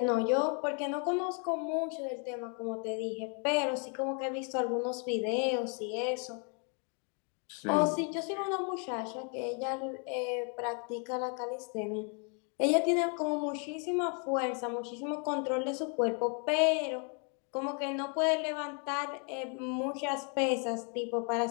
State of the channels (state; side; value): quieter; right; 38.4 dB